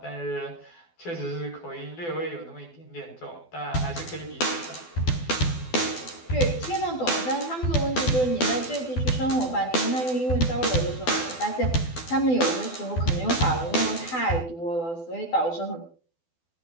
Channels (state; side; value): late; right; 12 ms